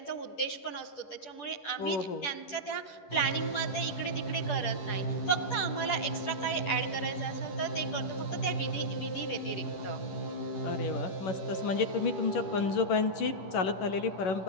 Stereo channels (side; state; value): right; late; 10 ms